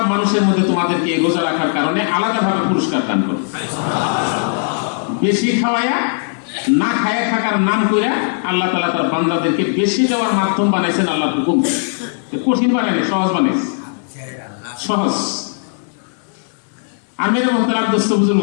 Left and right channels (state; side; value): silent; right; digital silence